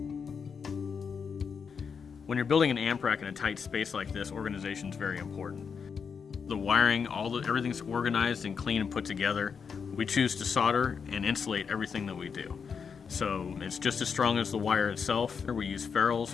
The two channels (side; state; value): right; quieter; 6.2 dB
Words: When you're building an amp rack in a tight space like this, organization is very important. The wiring, everything's organized and clean and put together. We choose to solder and insulate everything that we do. So it's just as strong as the wire itself. We use